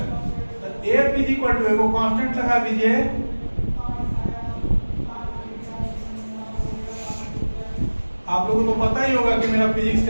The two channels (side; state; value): both; inverted; correlation -1.00